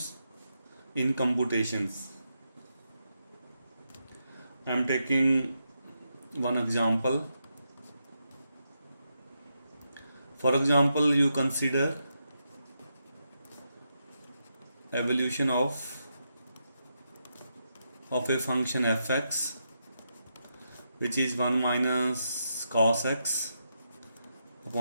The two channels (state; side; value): inverted; both; correlation -0.83